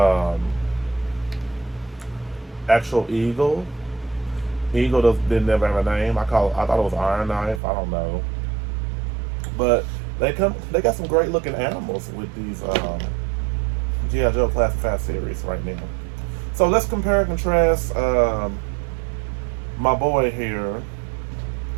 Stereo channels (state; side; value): drops out; left; at 7.6 s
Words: actual eagle. Eagle didn't never have a name. I thought it was Iron Knife. I don't know. But they got some great looking animals with these G.I. Joe Classified series right now. So let's compare and contrast my boy here